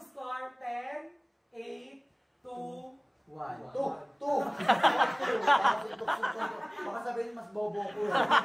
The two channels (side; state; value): both; identical; correlation 1.00